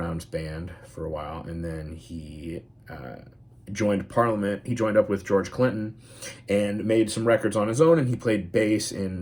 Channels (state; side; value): identical; both; correlation 1.00